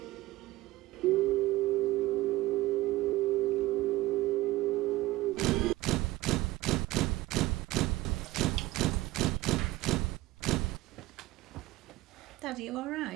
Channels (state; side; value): quieter; left; 18.0 dB